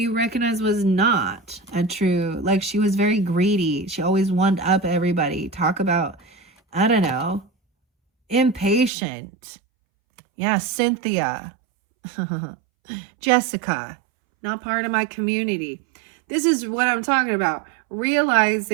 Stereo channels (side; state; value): left; drops out; at 8.9 s